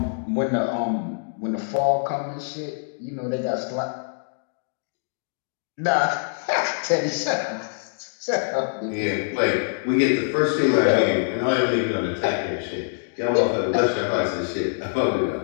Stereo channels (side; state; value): right; silent; digital silence